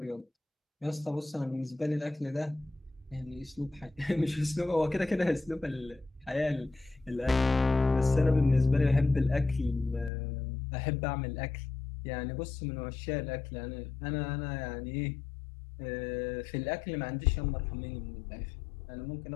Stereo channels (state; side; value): drops out; right; at 10.1 s